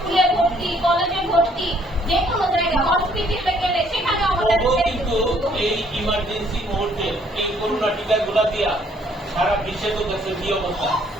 ভর্তি, কলেজে ভর্তি, যে কোনো জায়গায় হসপিটালে গেলে সেখানে আমাদের কিন্তু এই ইমার্জেন্সি মুহূর্তে এই করোনা টিকাগুলো দিয়া সারা বিশ্বে তো দেশের কি অবস্থা,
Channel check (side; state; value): both; normal; correlation 0.64